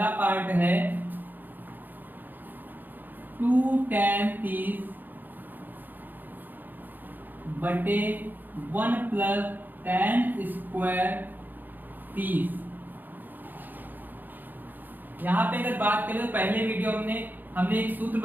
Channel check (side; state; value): left; late; 0.088 ms